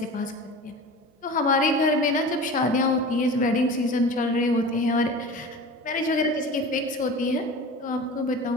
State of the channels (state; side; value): normal; both; correlation 0.35